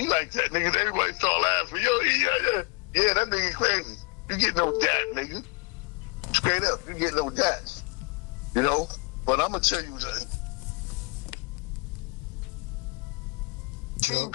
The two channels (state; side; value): quieter; right; 27.9 dB